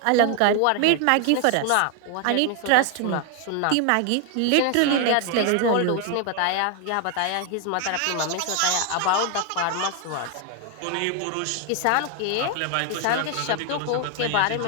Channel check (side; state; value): both; different; correlation 0.00